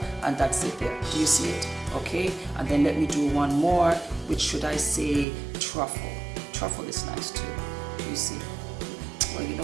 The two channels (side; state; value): left; drops out; at 5.2 s